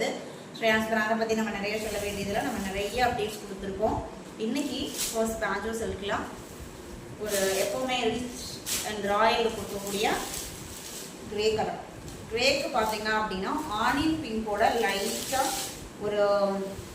ஸ்ரேயான்ஸ் பிராண்டை பற்றி நம்ம நிறைய சொல்ல வேண்டியதில் நம்ம நிறைய அப்டேட்ஸ் கொடுத்துருக்கோம். இன்னைக்கு ஃபர்ஸ்ட் பாஞ்சோ சில்க்லாம் ஒரு எப்போவுமே ரிச் அண்ட் ராயல் கொடுக்கக்கூடிய கிரே கலர். கிரேக்கு பார்த்தீங்க அப்படின்னா ஆனியன் பிங்கோட லைட்டாக ஒரு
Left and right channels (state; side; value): identical; both; correlation 1.00